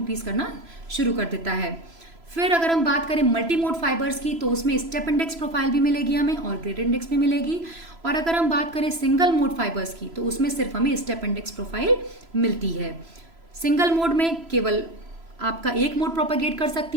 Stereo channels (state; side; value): late; left; 3.0 ms